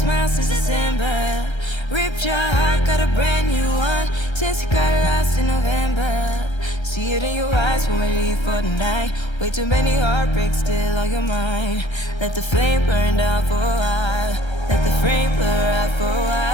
since December. Ripped your heart, got a brand new one since you got lost in November. See it in your eyes when we leave for the night. Way too many heartbreaks still on your mind. Let the flame burn down for a while. Let the frame blur out for a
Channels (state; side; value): late; right; 1.3 ms